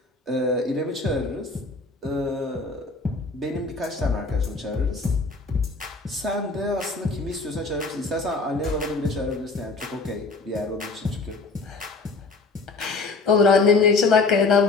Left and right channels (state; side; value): quieter; right; 3.8 dB